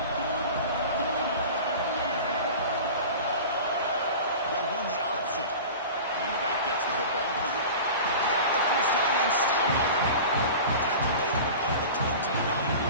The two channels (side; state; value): both; inverted; correlation -0.35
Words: They'll run the option. And the back gets the football. Got the first down and still moving. Tackle made on the play at the